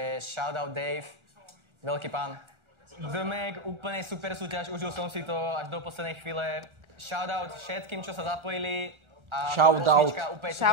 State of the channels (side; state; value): left; late; 1.4 ms